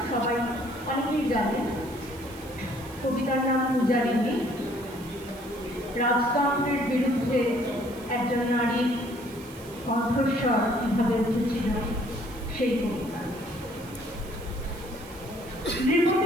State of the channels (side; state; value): right; noise; hiss, 21 dB below the sound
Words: সবাই অনেকেই জানে। কবিতার নাম পূজারিণী। রাজতন্ত্রের বিরুদ্ধে একজন নারীর কণ্ঠস্বর কীভাবে উঠেছিল সেই কবিতা।